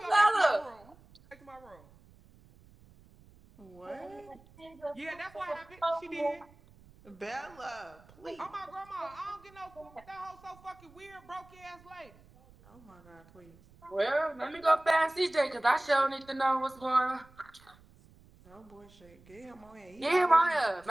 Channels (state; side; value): noise; right; rumble, 25 dB below the sound